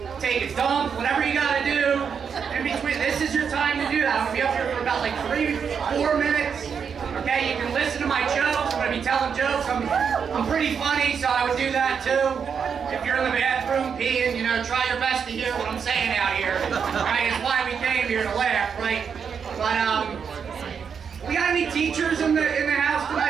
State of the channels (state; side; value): quieter; left; 6.7 dB